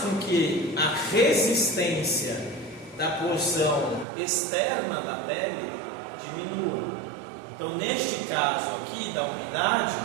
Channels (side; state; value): left; drops out; at 4.0 s